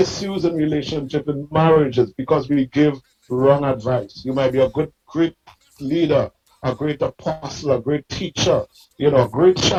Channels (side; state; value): both; identical; correlation 1.00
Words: in relationship and marriages because we give wrong advice. You might be a great leader, a great apostle, a great teacher, a great